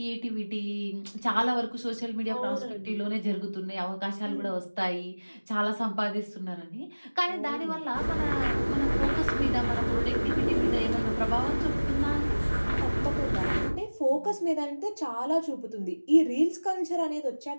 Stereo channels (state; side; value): inverted; both; correlation -1.00